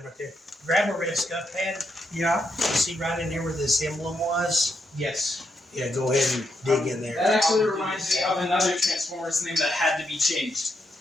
right there. Grab a red scuff pad. Yeah. See right in there where this emblem was? Yes. Yeah, go ahead and dig in there. That actually reminds me of another Transformers name that had to be changed.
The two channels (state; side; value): normal; both; correlation 0.80